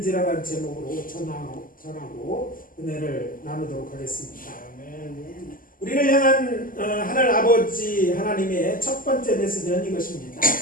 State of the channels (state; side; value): late; right; 0.41 ms